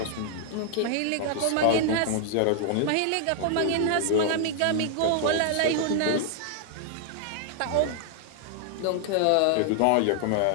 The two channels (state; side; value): different; both; correlation 0.00